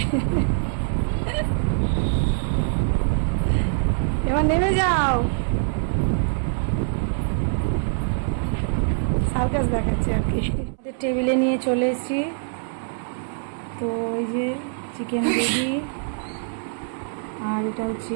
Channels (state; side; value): silent; left; 63 dB below the other